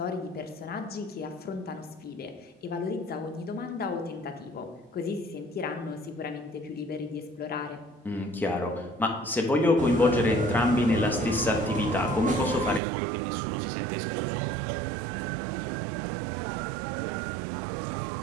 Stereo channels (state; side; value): drops out; left; at 12.8 s